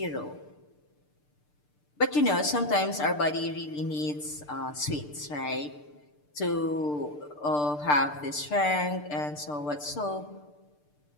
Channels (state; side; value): late; right; 6.7 ms